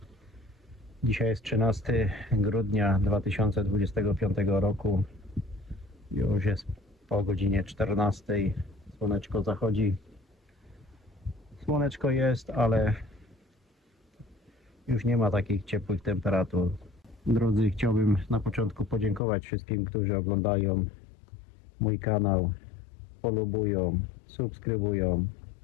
Dzisiaj jest 13 grudnia 2025 roku. Już jest po godzinie 14. Słoneczko zachodzi. Słoneczko jest, ale już nie ma takich ciepłych temperatur. Drodzy, chciałbym na początku podziękować wszystkim, którzy oglądają mój kanał, polubują, subskrybują.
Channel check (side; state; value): right; drops out; at 19.2 s